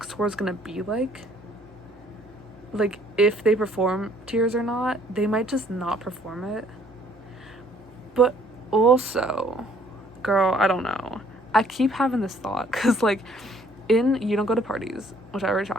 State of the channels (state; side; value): normal; both; correlation 0.61